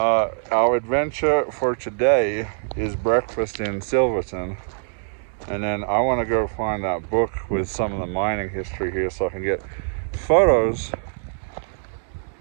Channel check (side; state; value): left; silent; 63 dB below the other